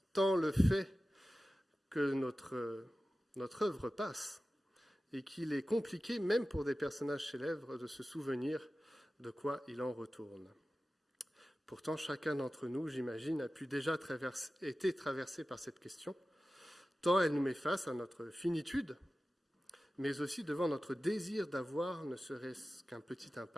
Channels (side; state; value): both; normal; correlation 0.95